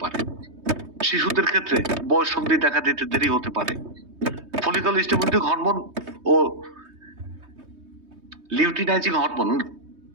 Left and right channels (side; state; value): left; late; 3.2 ms